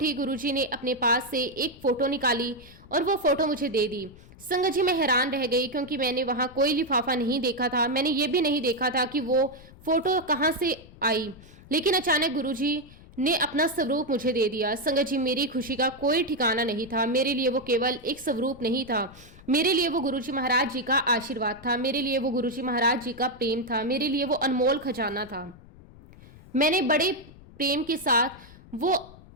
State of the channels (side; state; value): left; noise; rumble, 21 dB below the sound